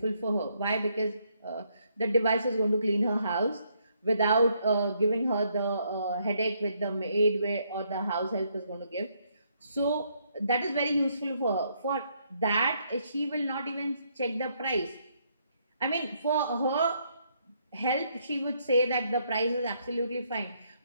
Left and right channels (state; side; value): inverted; both; correlation -0.72